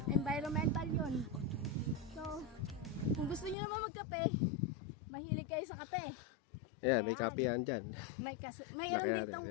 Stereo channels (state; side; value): drops out; right; at 3.6 s